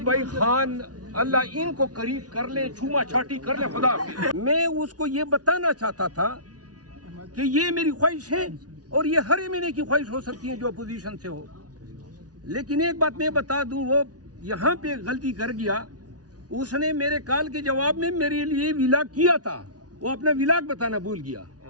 بھائی خان اللہ ان کو قریب کر لیں، چھوما چھاٹی کر لیں، خدا حافظ۔ میں اس کو یہ بتانا چاہتا تھا کہ یہ میری خواہش ہے، اور یہ ہر مہینے کی خواہش ہو سکتی ہے جو اپوزیشن سے ہو، لیکن ایک بات میں بتا دوں، وہ یہاں پہ غلطی کر گیا۔ اس نے میرے کال کے جواب میں میرے لیے ولاگ کیا تھا، وہ اپنا ولاگ بتانا بھول گیا۔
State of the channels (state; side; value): late; left; 0.68 ms